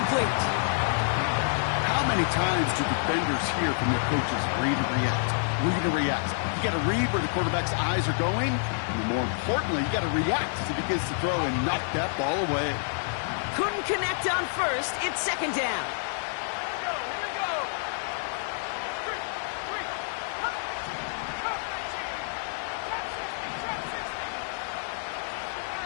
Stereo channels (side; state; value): right; silent; digital silence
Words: How many times do defenders hear from their coaches, read and react? Read and react. You got to read where the quarterback's eyes are going. And more importantly, you got to react as he begins to throw and knock that ball away. Couldn't connect on 1st. It's 2nd down.